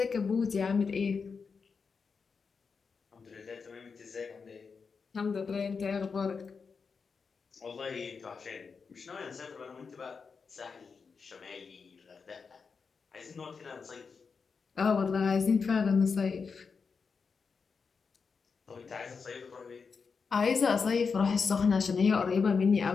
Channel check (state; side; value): quieter; right; 5.3 dB